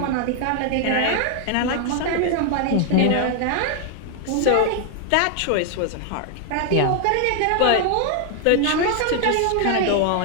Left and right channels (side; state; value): both; different; correlation 0.00